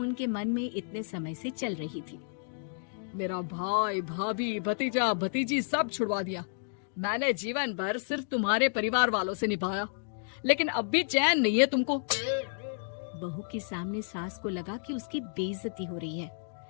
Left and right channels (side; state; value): right; silent; digital silence